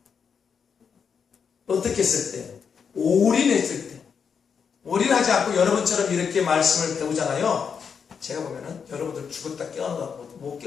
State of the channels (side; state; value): right; quieter; 6.5 dB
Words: 어떻게 했을 때? 올인했을 때. 올인하지 않고 여러분처럼 이렇게 말씀을 배우잖아요. 제가 보면은 여러분들 죽었다 깨어나고 못